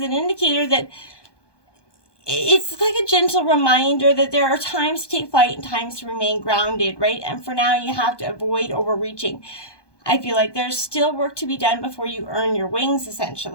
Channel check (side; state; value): right; late; 1.2 ms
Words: indicator that it's like a gentle reminder that there are times to take flight and times to remain grounded, right? And for now, you have to avoid overreaching. I feel like there's still work to be done before you earn your wings,